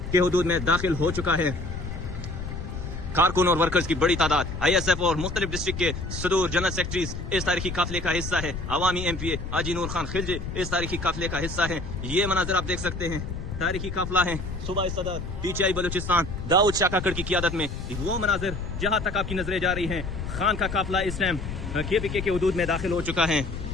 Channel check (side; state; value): left; noise; rumble, 7 dB below the sound